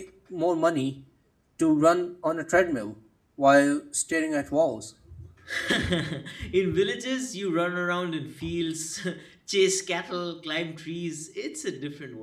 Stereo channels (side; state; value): both; identical; correlation 1.00